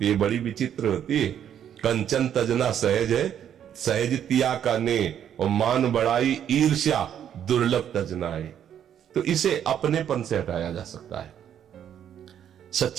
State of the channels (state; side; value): quieter; left; 9.6 dB